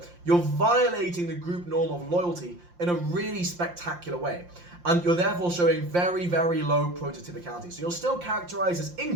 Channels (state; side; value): late; left; 5.7 ms